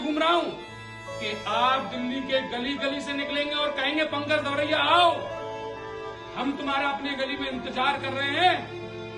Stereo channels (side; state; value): both; identical; correlation 1.00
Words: रहा हूं कि आप दिल्ली के गली गली से निकलेंगे और कहेंगे पंकज दवरिया आओ, हम तुम्हारा अपने गली में इंतजार कर रहे हैं,